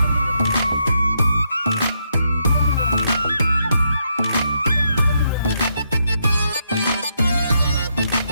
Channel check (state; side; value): inverted; both; correlation -0.79